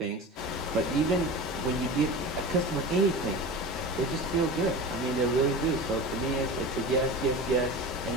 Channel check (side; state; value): both; normal; correlation 0.31